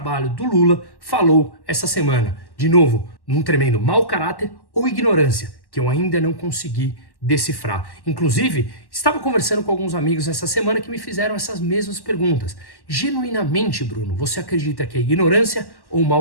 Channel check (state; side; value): late; right; 1.1 ms